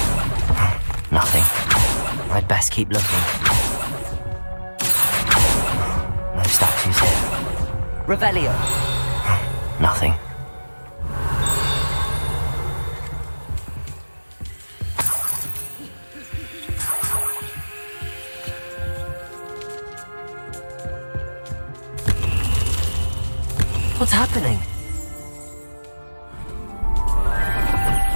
Nothing. I'd best keep looking. No statues here. Revelio! Nothing. What's happening?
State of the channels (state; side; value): inverted; both; correlation -1.00